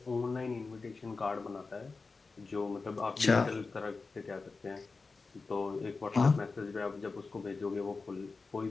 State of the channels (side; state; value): right; quieter; 4.1 dB